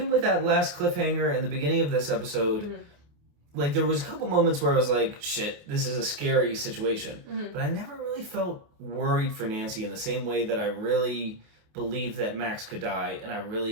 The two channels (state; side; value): late; left; 28 ms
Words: with that last cliffhanger in the beginning of this episode, Like, there was a couple moments where I was like, shit, this is a scary situation. Mm-hmm. But I never really felt worried for Nancy in the same way that I really believed that Max could die, and I